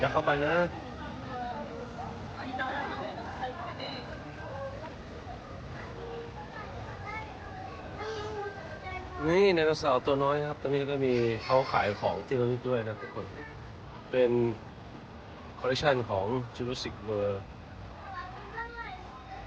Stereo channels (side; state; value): both; identical; correlation 1.00